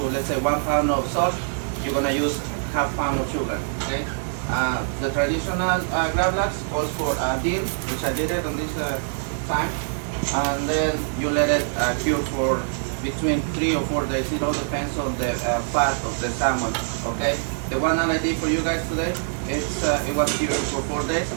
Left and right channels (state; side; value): silent; left; digital silence